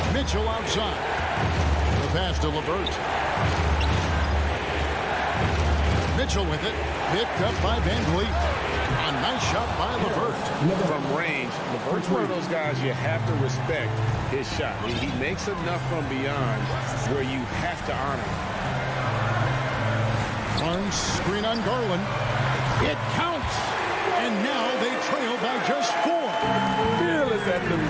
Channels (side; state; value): both; identical; correlation 1.00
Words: Mitchell outside. The pass to LeVert. Mitchell with it. Picked up by Van Vliet. A nice shot by LeVert. From range, LeVert's one of those guys you have to respect his shot. He makes enough from beyond where you have to honor him. Barnes screen on Garland. It counts. And now they trail by just 4. Fearless at the